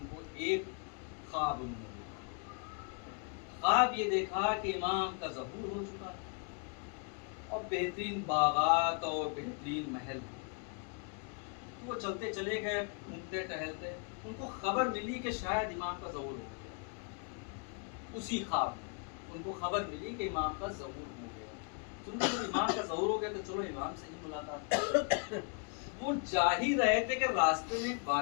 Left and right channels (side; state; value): right; quieter; 36.8 dB